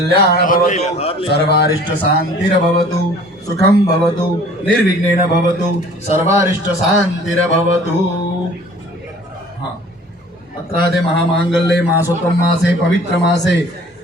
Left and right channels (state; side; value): normal; both; correlation 0.49